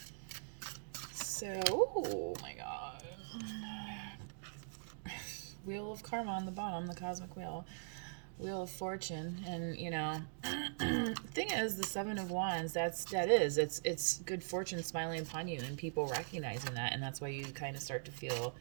So, oh my god. Wheel of Karma on the bottom, the cosmic wheel. Wheel of Fortune. And, you know, thing thing is, the Seven of Wands, it's good fortune smiling upon you and people recognizing that, and that's why you kind of start to feel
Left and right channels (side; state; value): left; silent; digital silence